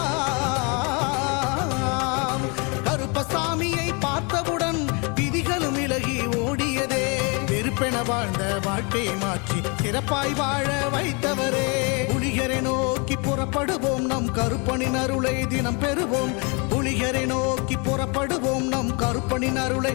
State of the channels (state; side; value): quieter; right; 32.0 dB